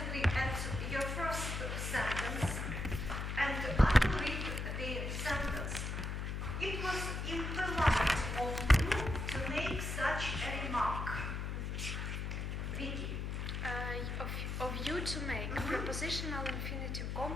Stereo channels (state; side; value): noise; left; hum, 3 dB below the sound